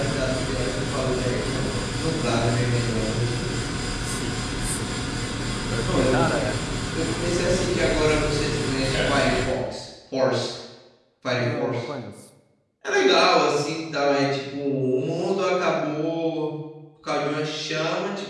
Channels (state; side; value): identical; both; correlation 1.00